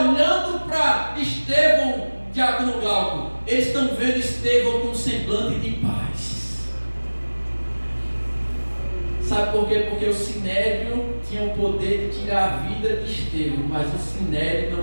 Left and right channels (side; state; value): both; inverted; correlation -1.00